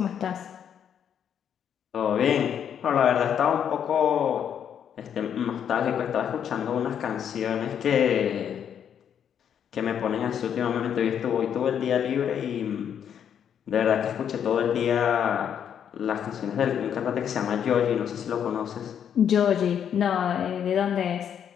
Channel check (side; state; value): right; quieter; 8.6 dB